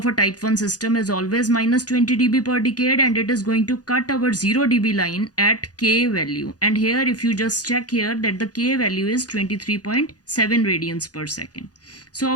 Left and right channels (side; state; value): right; late; 0.68 ms